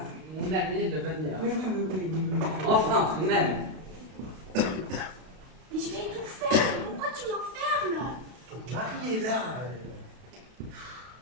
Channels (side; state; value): left; late; 32 ms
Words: mon amie, de venir? Oui. Enfin, tout de même. Mais je vais tout faire. Pourquoi tu m'enfermes? Ton mari est là.